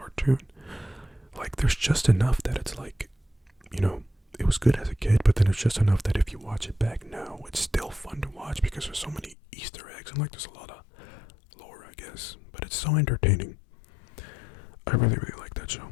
Like, there's just enough that it's like, you know, it was good as a kid, but then it's just enough that if you watch it back now, it's still fun to watch, because there's so many Easter eggs, and like there's a lot of lore, I guess, but it's so entertaining. I really like that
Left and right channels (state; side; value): drops out; right; at 9.3 s